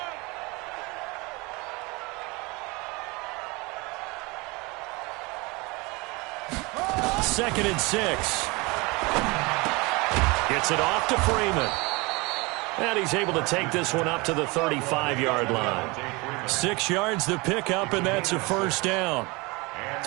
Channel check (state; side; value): quieter; left; 25.6 dB